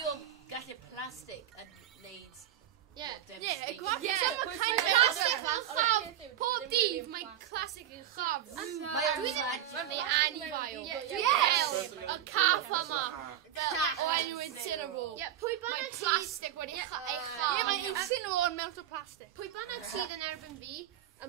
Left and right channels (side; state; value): left; quieter; 11.2 dB